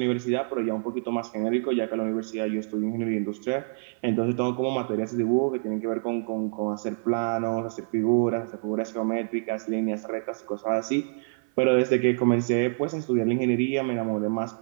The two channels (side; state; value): left; silent; 60 dB below the other